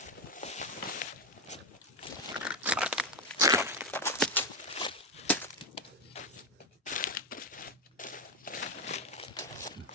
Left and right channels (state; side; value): normal; both; correlation 0.09